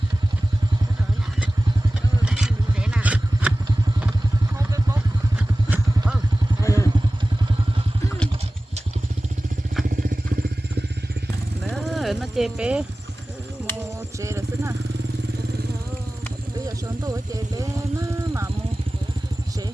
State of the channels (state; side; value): normal; both; correlation 0.97